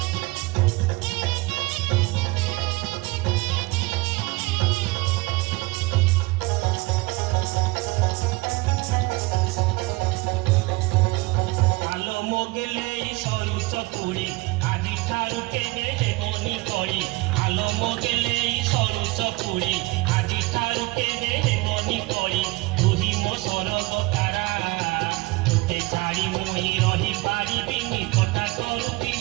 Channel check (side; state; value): left; quieter; 22.4 dB